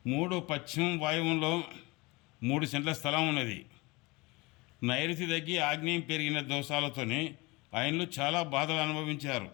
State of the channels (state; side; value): quieter; right; 24.4 dB